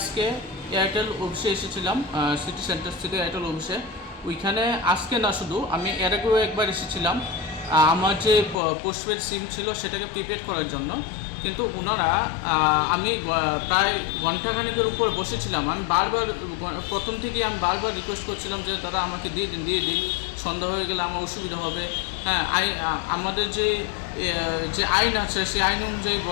এয়ারটেল অফিসে এসেছিলাম, সিটি সেন্টার থেকে এয়ারটেল অফিসে। ওইখানে আজকে না, শুধু আমি এর আগেও একবার এসেছিলাম আমার যে পোস্টপেড সিম ছিল সেটাকে প্রিপেড করার জন্য। কিন্তু ওনারা আমি প্রায় ঘন্টাখানেকের উপর বসেছিলাম। আমি বারবার প্রথম থেকেই আমি বারবার রিকোয়েস্ট করছিলাম যে দাদা আমাকে দিয়ে দিন, সন্ধ্যা হয়ে গেলে আমার অসুবিধা হবে। হ্যাঁ, আমাদের যে আইন আছে সেই আইন অনুযায়ী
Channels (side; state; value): right; drops out; at 8.6 s